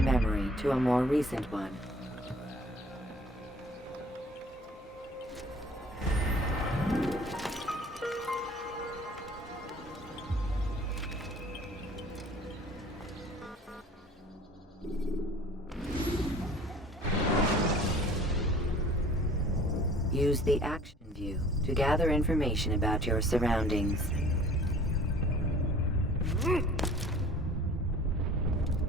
memory to a more recent one. Use the action view to gather information about your surroundings.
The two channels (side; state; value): both; normal; correlation 0.49